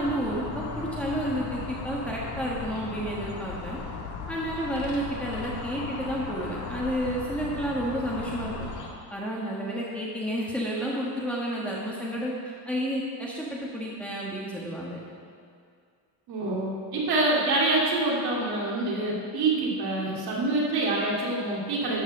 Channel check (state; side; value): normal; both; correlation 0.24